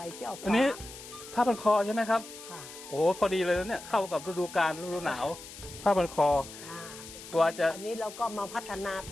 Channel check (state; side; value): noise; left; hiss, 14 dB below the sound